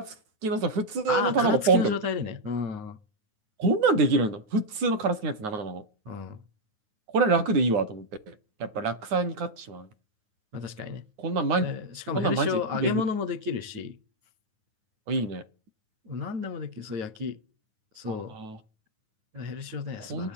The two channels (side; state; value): left; late; 9.4 ms